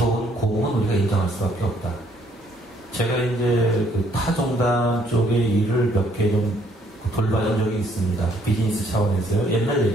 공은 우리가 인정할 수밖에 없다. 제가 이제 그 타종단 쪽의 일을 몇 개 좀 돌봐준 적이 있습니다. 비즈니스 차원에서요. 옛날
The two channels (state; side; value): normal; both; correlation 0.66